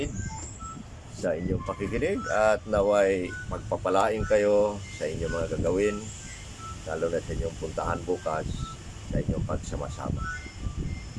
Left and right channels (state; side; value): identical; both; correlation 1.00